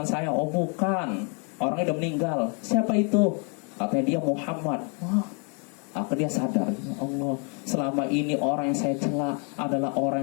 saya? Oh bukan, orangnya udah meninggal. Siapa itu? Katanya dia Muhammad. Wah, akhirnya dia sadar, ya Allah, selama ini orang yang saya cela adalah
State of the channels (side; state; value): right; quieter; 37.7 dB